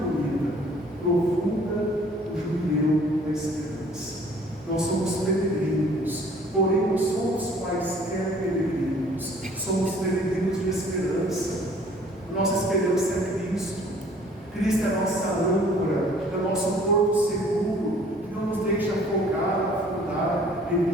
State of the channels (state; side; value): normal; both; correlation 0.55